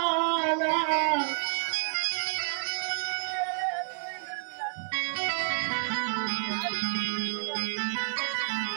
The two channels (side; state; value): left; silent; 58 dB below the other